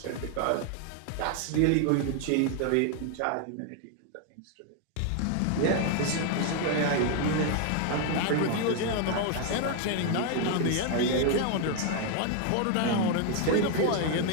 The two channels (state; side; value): different; both; correlation 0.01